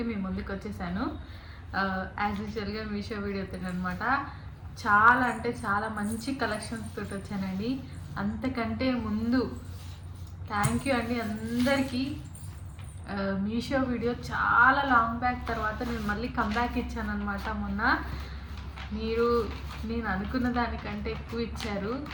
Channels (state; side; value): identical; both; correlation 1.00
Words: మీ ముందుకు వచ్చేసాను. యాజ్ యూజువల్గా మీషో వీడియోతో అనమాట. చాలా అంటే చాలా మంచి కలెక్షన్స్ తోటి వచ్చానండి. అంతకంటే ముందు థ్యాంక్ యూ అండి అందరికీ. మీషో వీడియో చాలా లాంగ్ బ్యాక్ తర్వాత నేను మళ్ళీ కమ్బ్యాక్ ఇచ్చాను అనమాట. మొన్న నేను అనుకున్న దానికంటే ఎక్కువ ఇచ్చారు.